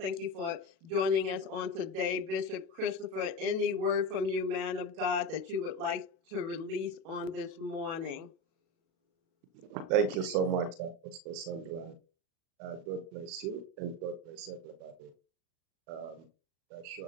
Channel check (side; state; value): left; late; 37 ms